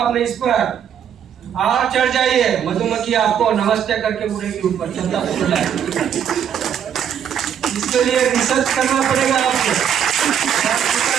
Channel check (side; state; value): left; quieter; 8.7 dB